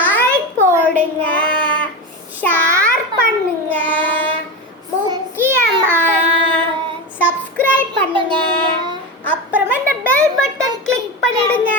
போடுங்க, ஷேர் பண்ணுங்க, முக்கியமா சப்ஸ்கிரைப் பண்ணுங்க. அப்புறமா இந்த பெல் பட்டன் கிளிக் பண்ணிடுங்க.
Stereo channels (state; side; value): normal; both; correlation 0.20